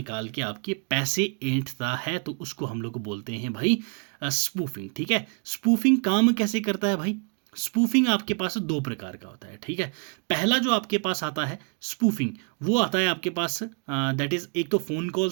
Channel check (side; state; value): left; quieter; 38.8 dB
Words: के आपके पैसे ऐंठता है, तो उसको हम लोग बोलते हैं भाई स्पूफिंग। ठीक है, स्पूफिंग काम कैसे करता है भाई? स्पूफिंग आपके पास दो प्रकार का होता है। ठीक है, पहला जो आपके पास आता है स्पूफिंग, वो आता है आपके पास दैट इज एक तो फ़ोन